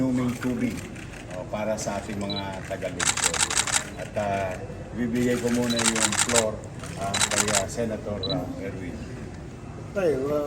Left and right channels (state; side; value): identical; both; correlation 1.00